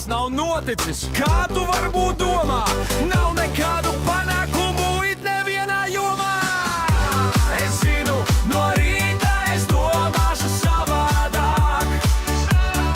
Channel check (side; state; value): both; identical; correlation 1.00